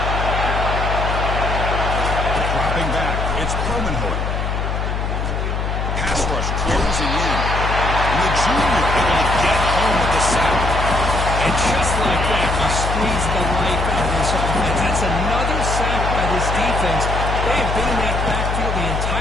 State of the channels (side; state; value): left; noise; hum, 1 dB below the sound